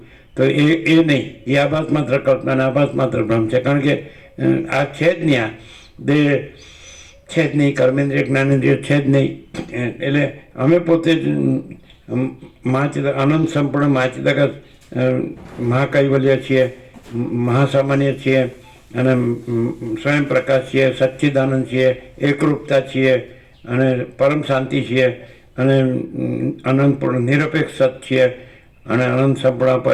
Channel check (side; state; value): both; identical; correlation 1.00